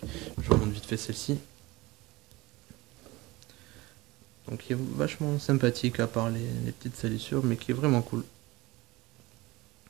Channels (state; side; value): quieter; left; 21.2 dB